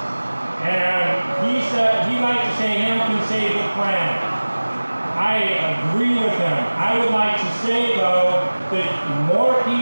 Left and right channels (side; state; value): both; inverted; correlation -1.00